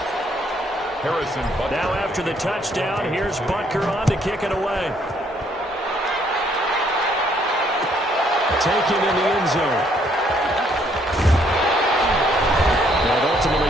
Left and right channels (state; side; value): normal; both; correlation 0.68